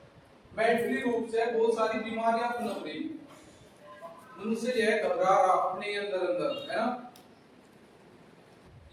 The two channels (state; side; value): identical; both; correlation 1.00